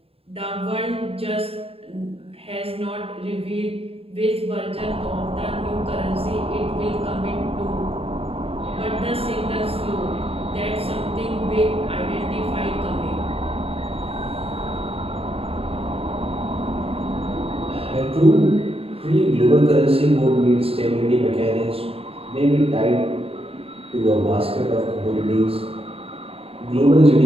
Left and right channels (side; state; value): left; late; 0.28 ms